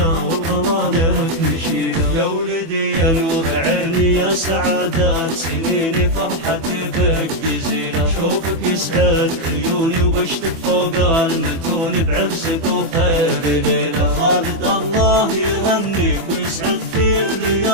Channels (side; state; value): left; late; 24 ms